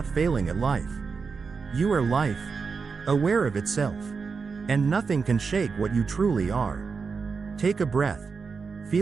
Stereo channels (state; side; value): quieter; left; 5.1 dB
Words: failing at life. You are life, aware of itself. And nothing can shake what you truly are. Take a breath.